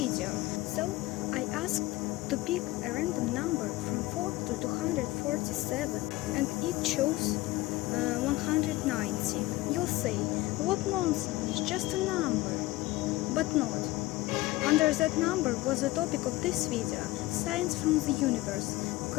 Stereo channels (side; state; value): right; quieter; 19.2 dB